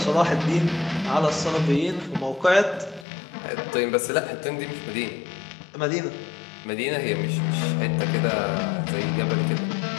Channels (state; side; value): drops out; right; at 3.1 s